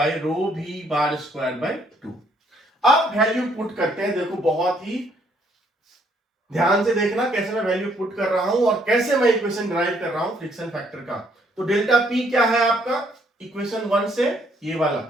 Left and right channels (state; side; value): normal; both; correlation 0.68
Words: rho v bar square by 2। अब वैल्यू पुट करते हैं। देखो बहुत ही ध्यान से देखना कैसे मैं वैल्यू पुट कर रहा हूं और कैसे मैं इक्वेशन ड्राइव कर रहा हूं फ्रिक्शन फैक्टर का। तो डेल्टा पी क्या है आपका, इक्वेशन 1 से ये वाला,